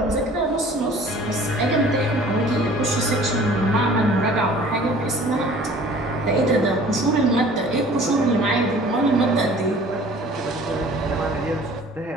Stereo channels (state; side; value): normal; both; correlation 0.49